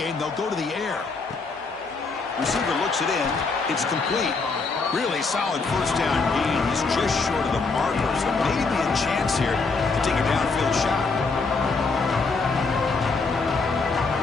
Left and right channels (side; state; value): right; quieter; 4.2 dB